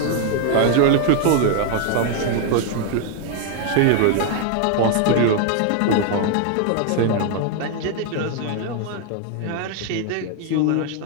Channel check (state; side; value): different; both; correlation 0.00